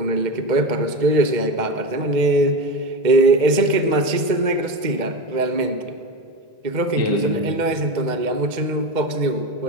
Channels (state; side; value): late; left; 2.1 ms